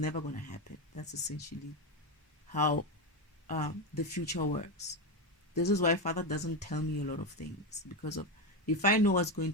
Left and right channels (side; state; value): both; normal; correlation 0.11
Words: going to happen. That's essentially how the future works. This is why Father doesn't tell me a lot of things, because of if I know what's going